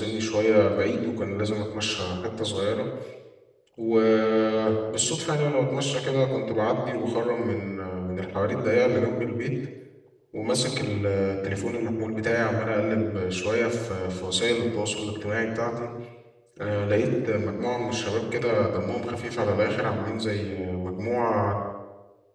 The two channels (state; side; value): identical; both; correlation 1.00